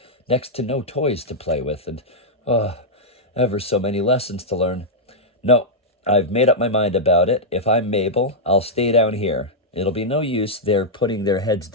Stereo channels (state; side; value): normal; both; correlation -0.06